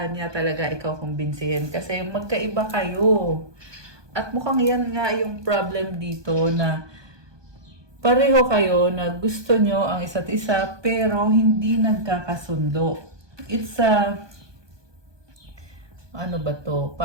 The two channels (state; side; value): late; left; 1.2 ms